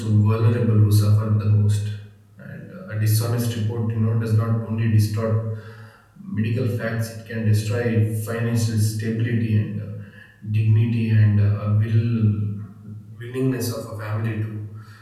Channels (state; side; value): identical; both; correlation 1.00